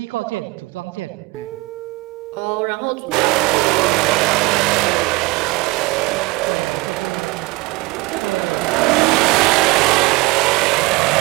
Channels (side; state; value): left; quieter; 23.1 dB